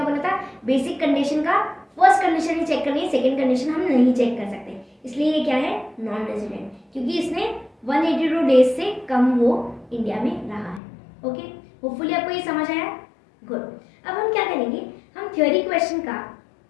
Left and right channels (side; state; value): right; drops out; at 10.8 s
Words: बोला था, बेसिक कंडीशन का फर्स्ट कंडीशन ही चेक करनी है, सेकंड कंडीशन हम नहीं चेक कर सकते, इसलिए ये क्या है, नॉन रेजिडेंट, क्योंकि इसने 182 डेज से कम वो इंडिया में रहा है। ओके, होपफुली आपको ये समझ आया, गुड। अब हम क्या करेंगे, हम थ्योरी क्वेश्चन का